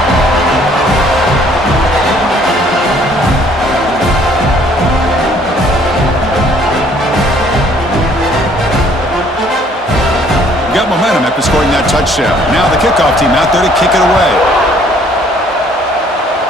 Got momentum after scoring that touchdown. Now the kickoff team out there to kick it away.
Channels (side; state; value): both; normal; correlation 0.60